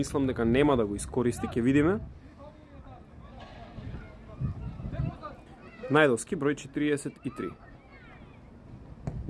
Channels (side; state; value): both; identical; correlation 1.00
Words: дека нема да го искористи, ќе видиме. Најдовски, број 43.